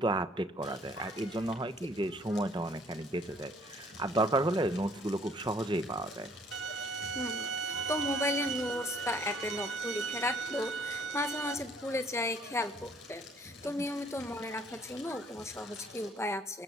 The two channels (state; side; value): normal; both; correlation 0.60